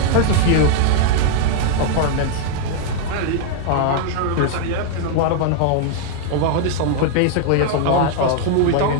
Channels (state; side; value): different; both; correlation 0.00